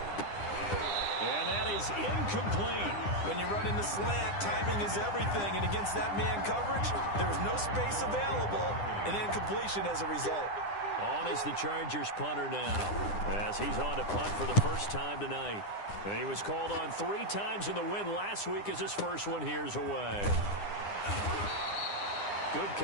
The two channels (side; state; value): right; late; 9.9 ms